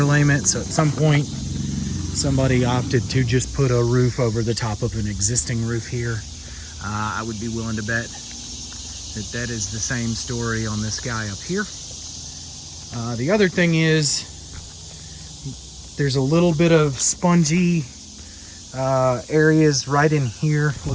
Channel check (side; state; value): both; identical; correlation 1.00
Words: so at some point somebody opted to just put a roof over the top of an existing roof here. I would be willing to bet that that is the same story on this guy up here. The other thing is there's a little bit of spongy areas right in here.